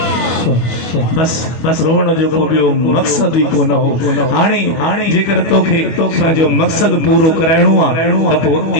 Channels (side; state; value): right; late; 25 ms